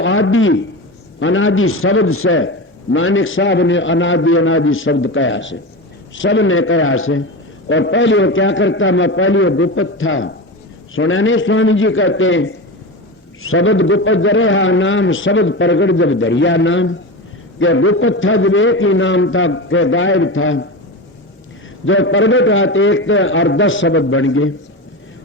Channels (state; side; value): normal; both; correlation 0.23